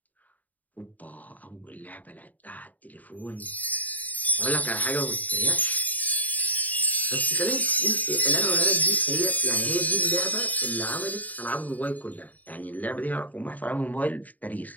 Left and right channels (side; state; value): right; late; 0.077 ms